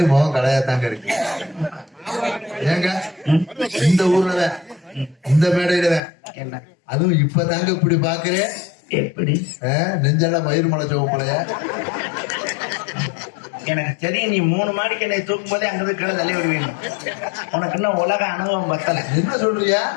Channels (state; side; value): drops out; right; at 6.0 s